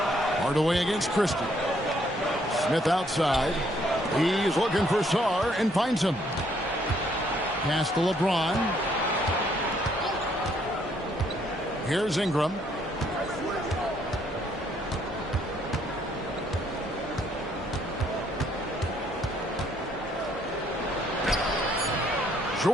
Hardaway against Christie. Smith outside. He's looking for Sarr and finds him. Pass to LeBron. Here's Ingram.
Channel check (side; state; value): both; normal; correlation 0.68